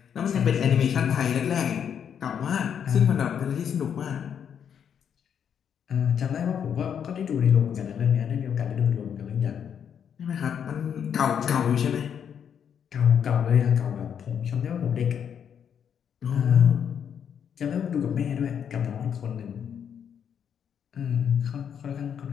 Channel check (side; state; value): right; quieter; 8.1 dB